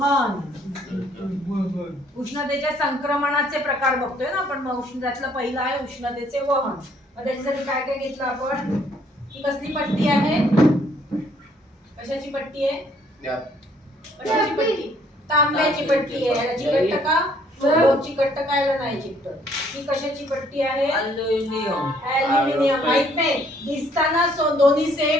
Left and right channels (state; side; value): normal; both; correlation 0.64